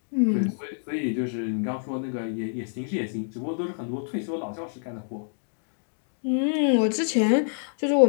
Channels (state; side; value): silent; right; digital silence